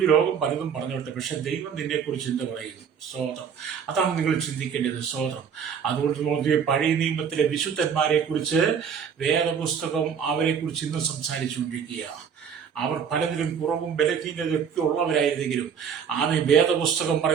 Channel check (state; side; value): quieter; left; 7.2 dB